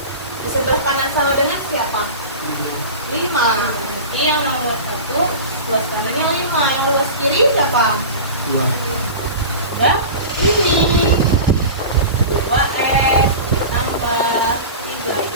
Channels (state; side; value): inverted; both; correlation -0.31